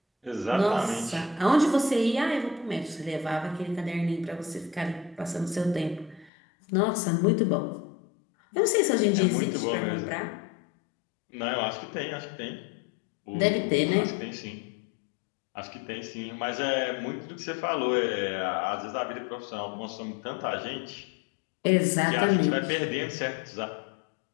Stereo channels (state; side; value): drops out; right; at 6.3 s